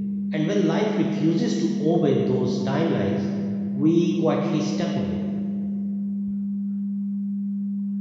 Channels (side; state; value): both; identical; correlation 1.00